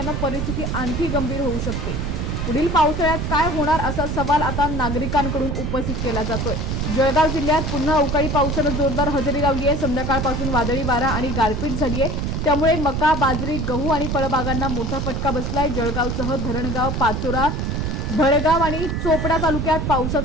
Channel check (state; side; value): noise; right; rumble, 2 dB below the sound